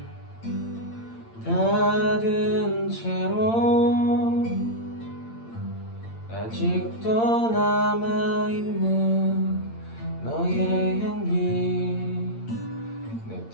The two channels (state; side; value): late; right; 8.8 ms